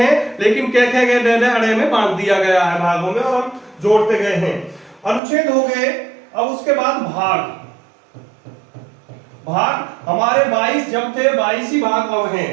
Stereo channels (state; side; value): drops out; left; at 5.2 s